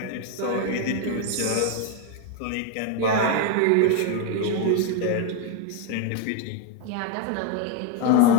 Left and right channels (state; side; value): different; both; correlation 0.01